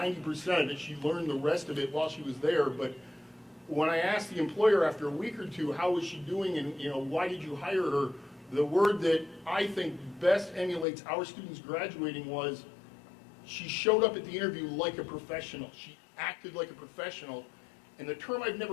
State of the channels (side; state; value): right; drops out; at 10.9 s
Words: of it. She learned the rest of it while she was there. But when I asked the employer after a week or two, how was she doing and why did you hire her, the word that I think best emulates our students graduating was she showed up at the interview like a professional. She acted like a professional. And the term I've